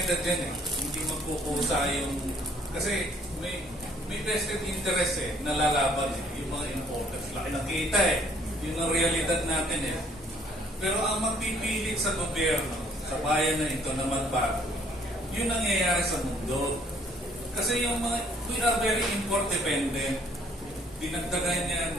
dyan eh. Hindi magkukusa yung... Kasi may vested interest eh, nalalaban eh, yung mga importers. Laki ng kita eh. Yun ang realidad natin eh. Pero ang magpipilit sa gobyerno, sa bayan na ito na magbago, yun ang nangyayari sa mundo. Kasi yung mga, we are very import dependent. Dinagdagan yan,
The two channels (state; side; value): normal; both; correlation 0.61